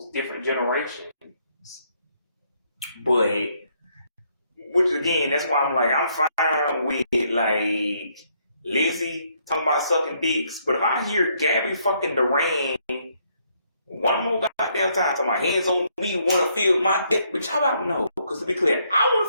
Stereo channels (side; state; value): both; inverted; correlation -0.71